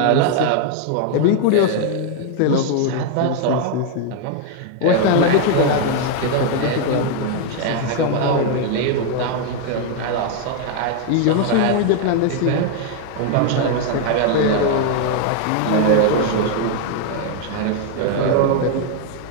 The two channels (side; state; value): both; different; correlation 0.00